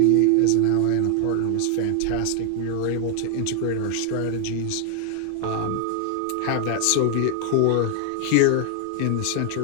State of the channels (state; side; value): different; both; correlation 0.00